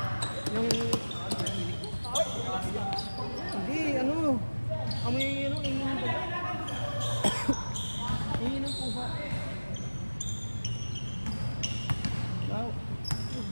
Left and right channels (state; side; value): inverted; both; correlation -1.00